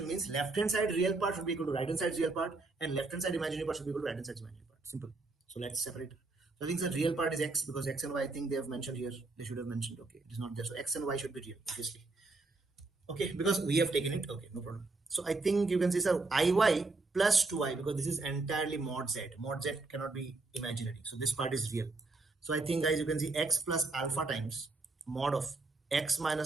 means left hand side real part should be equal to right hand side real part and left hand side imaginary part should be equal to right hand side imaginary part. Simple. So let's separate. So I think the real part is x because x and y I think they have mentioned here. They should have mentioned. Okay, it is not there. So x and y should be real, obviously. Okay, because we have taken it. Okay, no problem. So I think you can see, sir, iy plus 2i because this is entirely mod z. Mod z cannot be imaginary. So this part is real. So I think, guys, you can see x plus alpha times mod of x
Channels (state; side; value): quieter; left; 3.4 dB